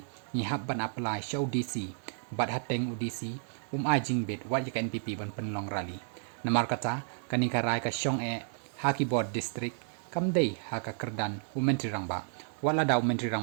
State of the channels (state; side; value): silent; left; 57 dB below the other